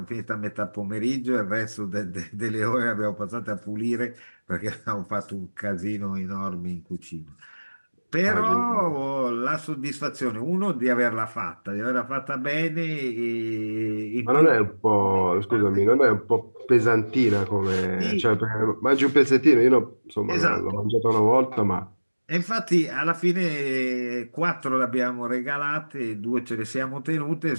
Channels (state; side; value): inverted; both; correlation -1.00